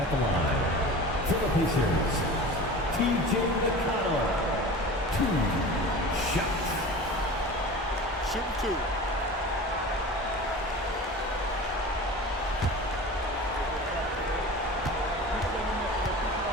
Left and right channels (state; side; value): normal; both; correlation 0.36